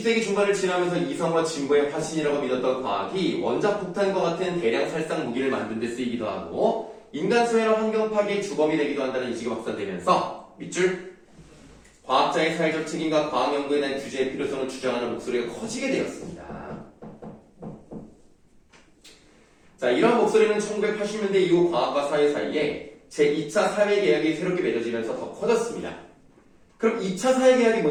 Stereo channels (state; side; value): identical; both; correlation 1.00